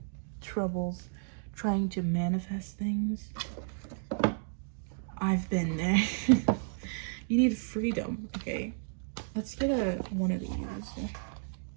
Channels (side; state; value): left; silent; digital silence